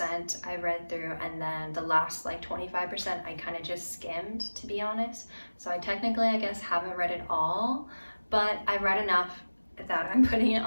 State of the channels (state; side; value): inverted; both; correlation -1.00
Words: I read through, and then the last like 25% I kind of just skimmed, to be honest. So I technically, I guess, haven't read it all, but I read enough that I'm putting it